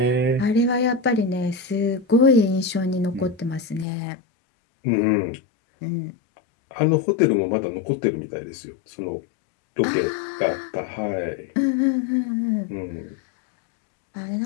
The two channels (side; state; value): right; drops out; at 3.9 s